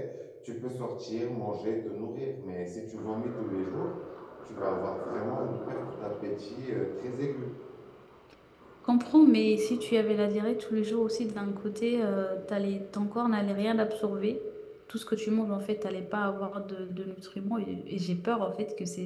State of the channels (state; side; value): identical; both; correlation 1.00